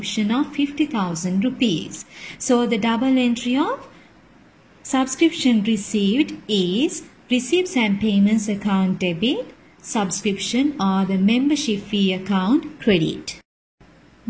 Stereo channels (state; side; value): identical; both; correlation 1.00